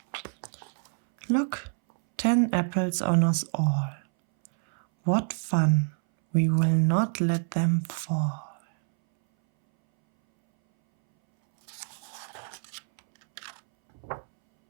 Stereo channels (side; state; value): left; silent; 60 dB below the other